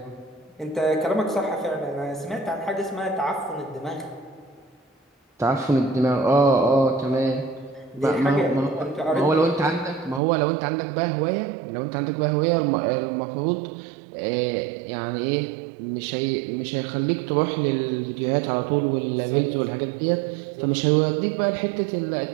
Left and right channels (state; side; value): drops out; left; at 10.2 s